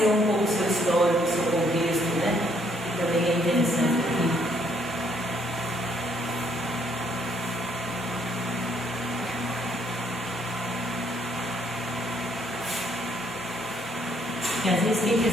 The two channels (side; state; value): both; normal; correlation 0.68